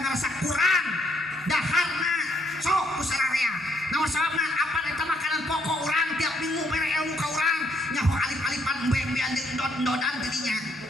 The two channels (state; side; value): normal; both; correlation 0.70